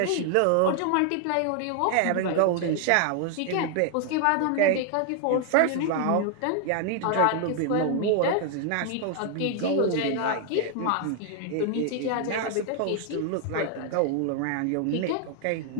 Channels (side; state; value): both; different; correlation 0.00